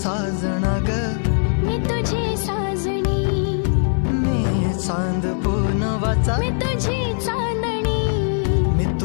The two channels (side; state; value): right; silent; 65 dB below the other